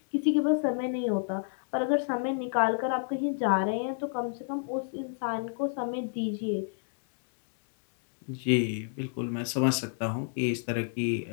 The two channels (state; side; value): silent; right; digital silence